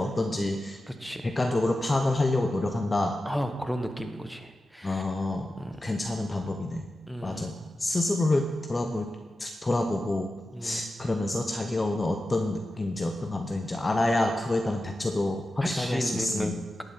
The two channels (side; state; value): both; normal; correlation 0.92